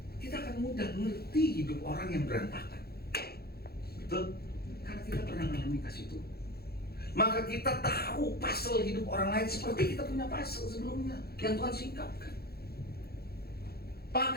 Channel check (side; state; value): right; late; 0.46 ms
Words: kita akan mudah mengerti hidup orang yang berantakan. Betul? Karena kita pernah mengalami kasih Tuhan. Maka kita tahu puzzle hidup orang lain seperti kita punya puzzle sebelumnya yang Tuhan singkapkan.